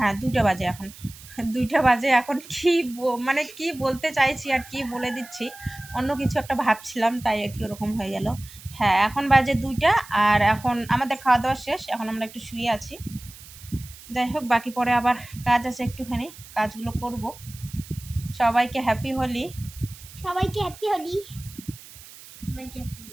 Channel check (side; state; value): right; noise; hiss, 18 dB below the sound